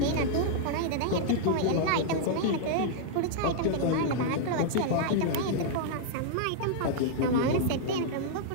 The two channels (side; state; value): both; different; correlation -0.01